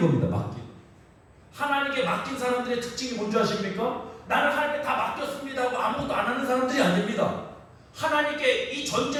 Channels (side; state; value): both; identical; correlation 1.00